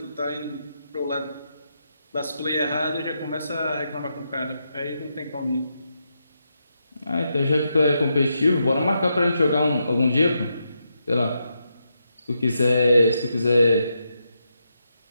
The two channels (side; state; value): both; inverted; correlation -0.83